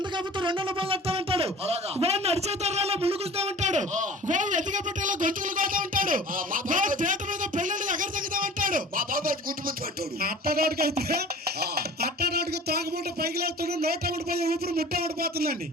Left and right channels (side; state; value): both; normal; correlation 0.43